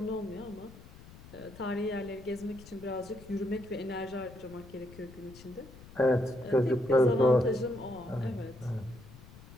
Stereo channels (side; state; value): left; noise; rumble, 19 dB below the sound